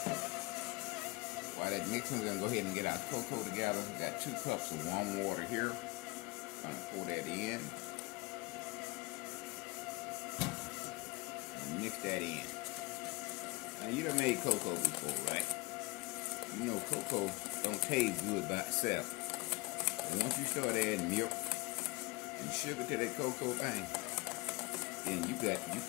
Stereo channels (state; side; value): quieter; right; 23.7 dB